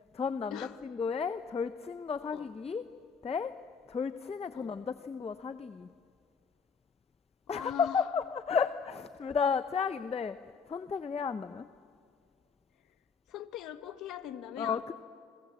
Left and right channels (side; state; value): right; quieter; 5.8 dB